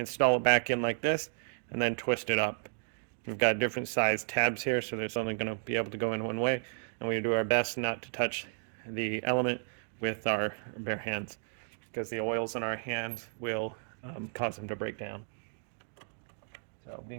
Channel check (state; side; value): silent; left; 56 dB below the other